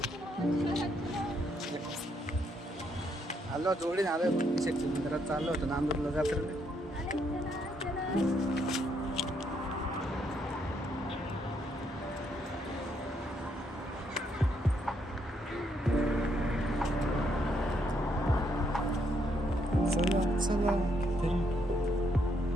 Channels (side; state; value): both; normal; correlation 0.74